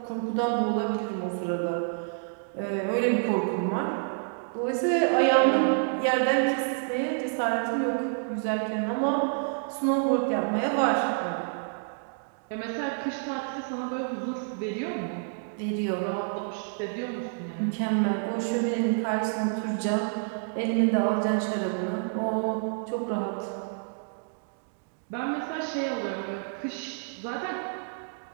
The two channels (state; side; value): silent; left; digital silence